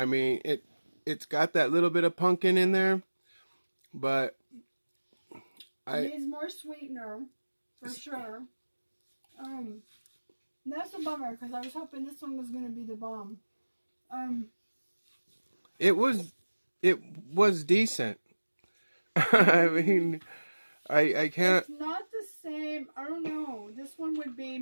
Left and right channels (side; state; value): both; inverted; correlation -1.00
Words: mean, it's got that little bit of pumpkin in there, but it needs more sweetener, for sure. That's a bummer, because I was hoping this one was going to be the bomb. It was decent. I mean, I can't... It's not the same. I don't know. This one would